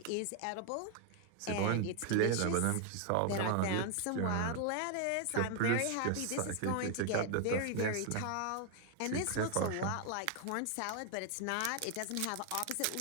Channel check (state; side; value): different; both; correlation 0.00